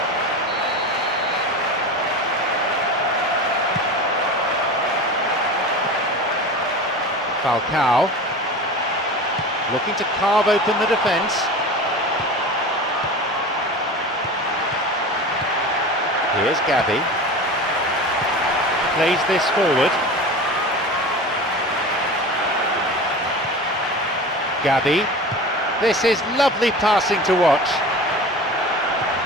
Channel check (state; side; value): normal; both; correlation 0.32